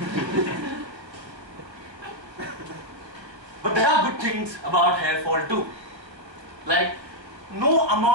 But there are good things about hair fall too. Like, no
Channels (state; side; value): late; left; 1.4 ms